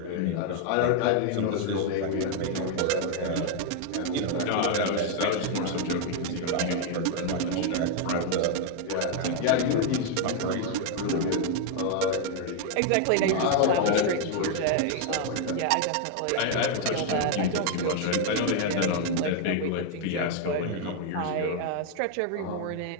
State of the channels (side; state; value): both; different; correlation 0.00